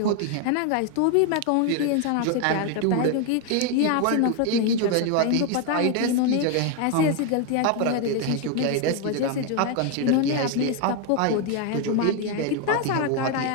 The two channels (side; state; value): both; different; correlation 0.01